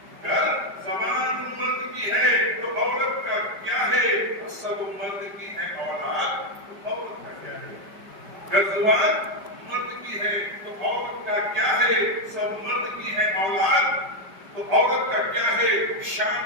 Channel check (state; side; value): late; left; 5.1 ms